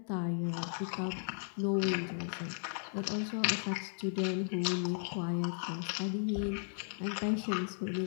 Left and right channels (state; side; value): silent; right; digital silence